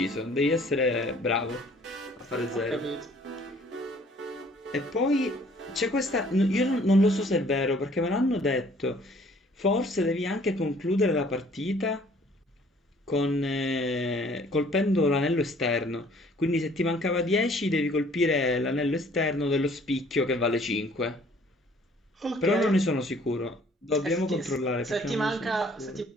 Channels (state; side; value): normal; both; correlation 0.57